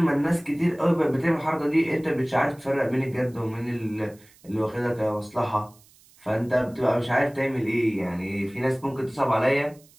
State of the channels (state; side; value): noise; right; hiss, 28 dB below the sound